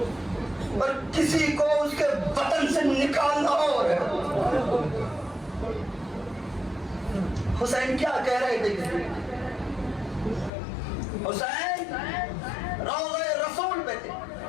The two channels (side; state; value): right; drops out; at 10.5 s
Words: اور کسی کو اس کے وطن سے نکالنا اور ہے۔ حسین کیا کہہ رہے تھے؟ حسین روضہ رسول پہ تھے،